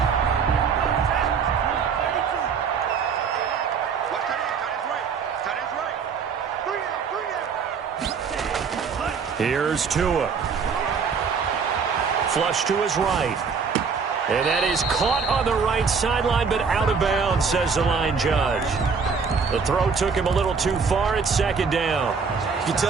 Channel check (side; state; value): left; quieter; 5.7 dB